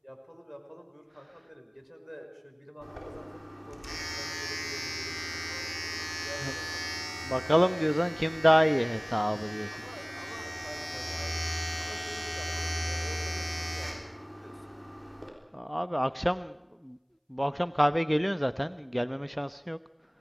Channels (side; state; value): both; identical; correlation 1.00